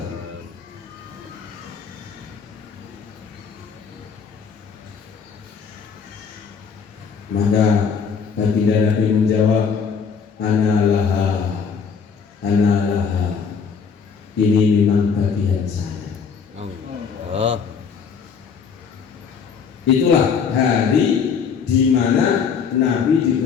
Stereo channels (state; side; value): quieter; right; 6.1 dB